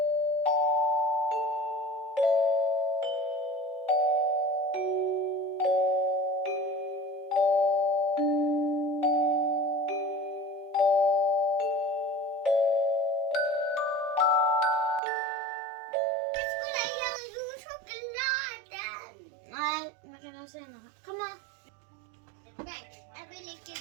Kom on. Nej, jag vill inte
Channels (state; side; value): drops out; left; at 15.0 s